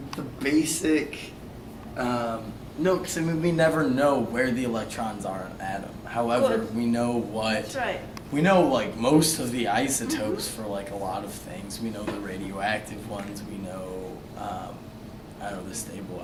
basic. No, because I mean we never know where the electrons are in an atom. However, Good. we know what. That's right. We know most of the isotopes for a lot of things. We know the radioactive ones. We know I don't know, the stable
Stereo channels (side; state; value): both; identical; correlation 1.00